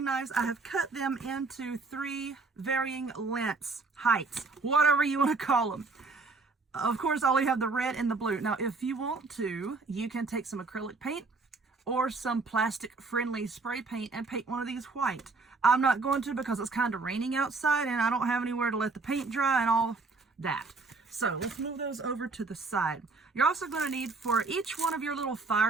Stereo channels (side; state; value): left; quieter; 4.0 dB